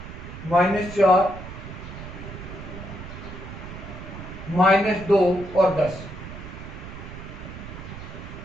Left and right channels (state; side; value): noise; right; rumble, 11 dB below the sound